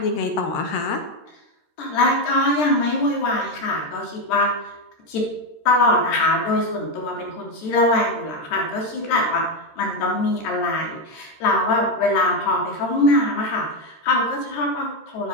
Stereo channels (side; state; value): right; late; 13 ms